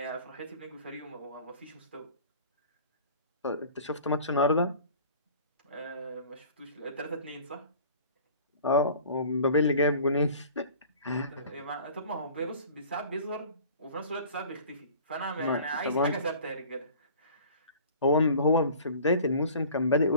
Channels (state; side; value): inverted; both; correlation -0.46